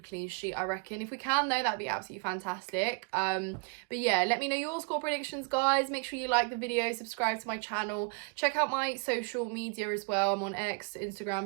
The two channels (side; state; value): left; quieter; 34.2 dB